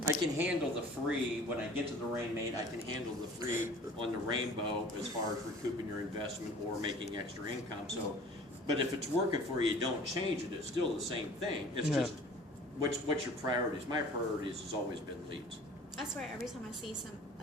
I can handle the free when I get to the Rainmate. I can handle the free on the Rainbow as far as recouping your investment or making extra income. So, but if it's working for you, don't change it. It's still the same thing. It's Yeah. just what's your priorities. My priorities has always been leads. I swear, every time I see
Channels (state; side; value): normal; both; correlation 0.47